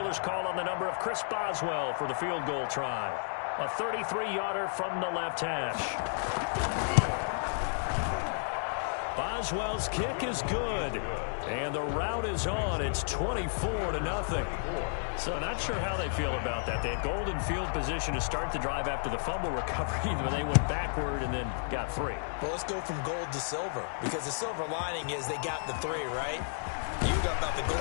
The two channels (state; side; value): silent; right; digital silence